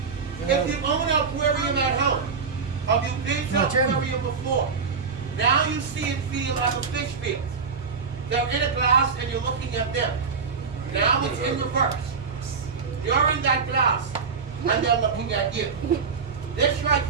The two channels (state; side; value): quieter; left; 5.4 dB